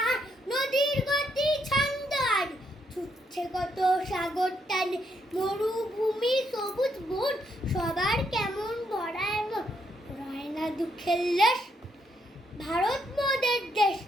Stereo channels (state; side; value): normal; both; correlation 0.76